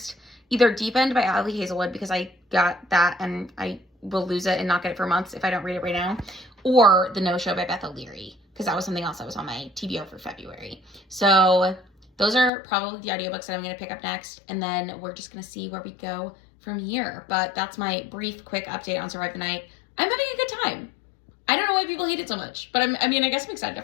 Either Deepened by Ali Hazelwood, because I got that and I will lose it and not get it for months if I don't read it right now. Or The No Show by Beth O'Leary, because that was something else that was on my TBO for February. So those are probably the audiobooks that I'm going to pick up next. And then we're just going to see where we go from here. But that's my brief, quick update on Survive the Night. I'm having a good time. I don't know why people hate it so much, but I guess I'm excited to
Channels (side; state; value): right; drops out; at 12.5 s